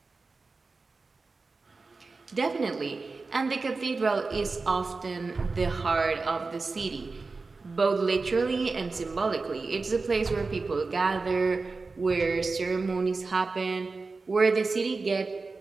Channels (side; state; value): left; quieter; 4.0 dB